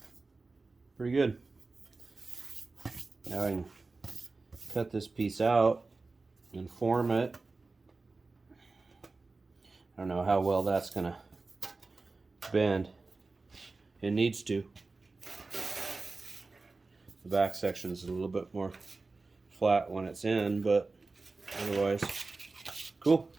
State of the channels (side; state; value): left; quieter; 3.7 dB